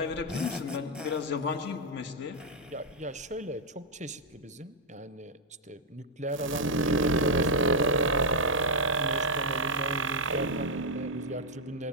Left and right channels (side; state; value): both; normal; correlation -0.03